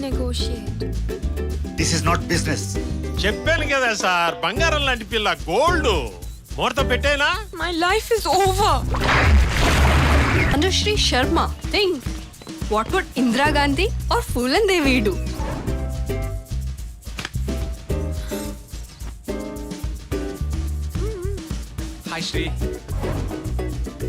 This is not business. చెప్పాను కదా sir, బంగారం లాంటి పిల్ల, gold ముహూర్తం పెట్టేనా? My life is over. Anushri Sharma, think. What would Indira Gandhi or Phulan Devi do? Hi Shri.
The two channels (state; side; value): identical; both; correlation 1.00